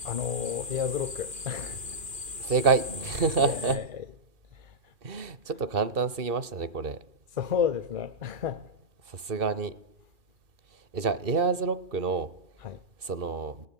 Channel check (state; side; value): late; left; 2.6 ms